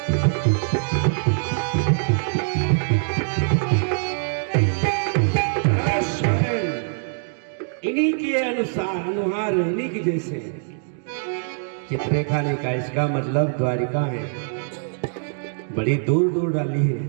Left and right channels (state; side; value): silent; left; digital silence